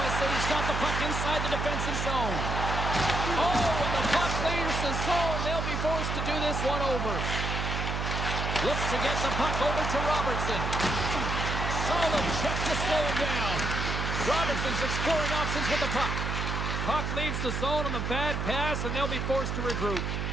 got the puck inside the defensive zone. Oh, and the puck clears the zone. They'll be forced to do this one over. Looks to get the puck over to Robertson. Solid check to slow him down. Robertson's exploring options with the puck. Puck leaves the zone on the bad pass, and they'll be forced to regroup.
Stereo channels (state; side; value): noise; right; hum, 2 dB below the sound